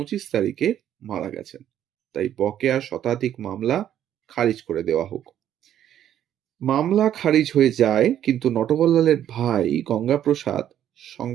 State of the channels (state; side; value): quieter; left; 10.8 dB